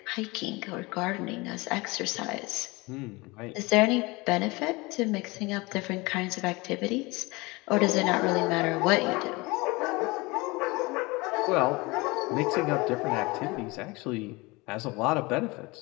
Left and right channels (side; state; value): right; quieter; 24.1 dB